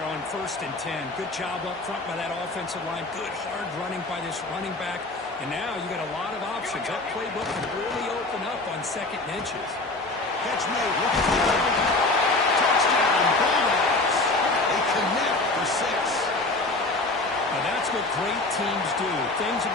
on 1st and 10. Good job up front by that offensive line. Good hard running by this running back. And now you got a lot of options. That playbook can really open up on 2nd and inches. Catch made. Looking for the touchdown. Bulldogs. They connect for 6. Now that's what great teams do. Things are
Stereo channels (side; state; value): right; quieter; 3.1 dB